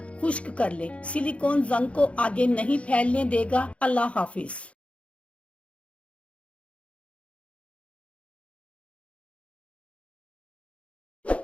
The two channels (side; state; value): right; late; 0.062 ms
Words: खुश्क कर लें। सिलिकॉन जंग को आगे नहीं फैलने देगा। अल्लाह हाफिज।